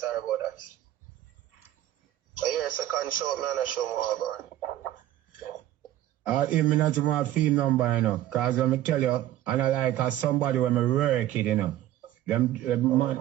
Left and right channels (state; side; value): quieter; left; 13.5 dB